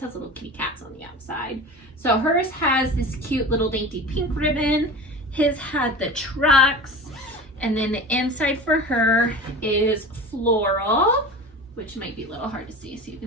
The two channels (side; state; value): both; normal; correlation 0.33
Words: little kitty cats on the outside. So hers has this cute little dainty pink ribbon. His had the trucks. And then the inside for her is floral, which might be a little hard to see. So you